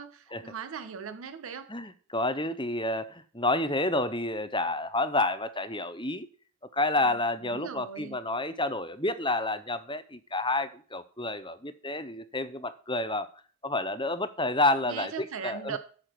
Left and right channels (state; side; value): normal; both; correlation 0.11